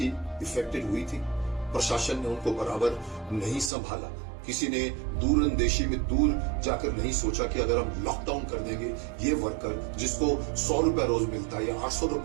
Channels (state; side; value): drops out; left; at 3.7 s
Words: इफेक्टेड हुई थी। प्रशासन ने उनको बराबर नहीं संभाला। किसी ने दूर अंदेशी में दूर जाकर नहीं सोचा कि अगर हम लॉकडाउन कर देंगे, ये वर्कर जिसको 100 रुपए रोज मिलता है या 800